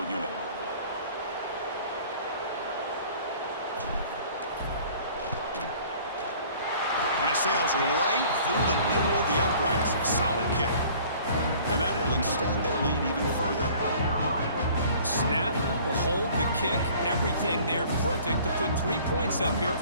unit. And it sails right through the middle of the uprights. Solid kick. And that will extend their lead even further. Snap, the hold, the kick, everything there perfect to put 3 points up here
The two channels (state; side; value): inverted; both; correlation -0.51